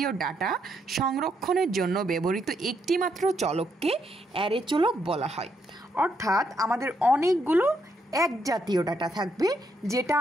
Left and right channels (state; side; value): normal; both; correlation 0.76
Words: ডাটা সংরক্ষণের জন্য ব্যবহৃত একটিমাত্র চলককে অ্যারে চলক বলা হয়। অর্থাৎ আমাদের অনেকগুলো এক জাতীয় ডাটা থাকবে যেটা